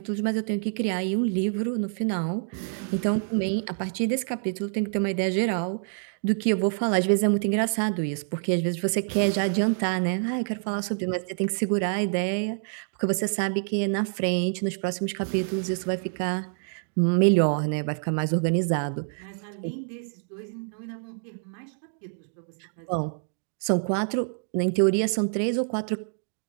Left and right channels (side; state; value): left; silent; digital silence